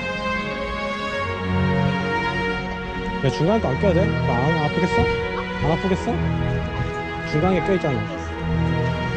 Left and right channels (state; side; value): identical; both; correlation 1.00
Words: 야, 중간에 거 안 껴야 돼? 안 아프겠어? 안 아프겠어? 중간에 껴있잖아.